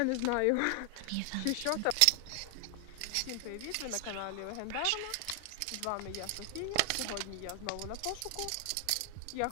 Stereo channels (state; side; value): different; both; correlation 0.00